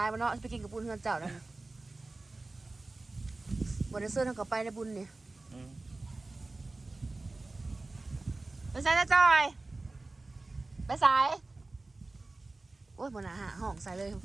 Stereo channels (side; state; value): left; quieter; 3.2 dB